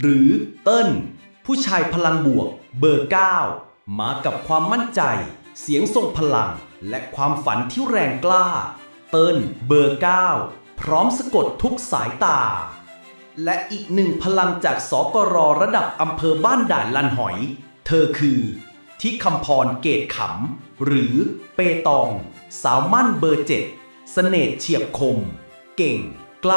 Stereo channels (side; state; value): both; inverted; correlation -1.00